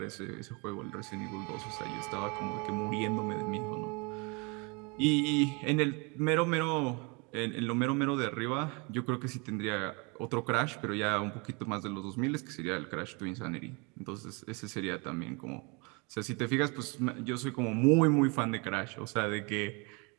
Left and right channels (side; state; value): left; quieter; 30.5 dB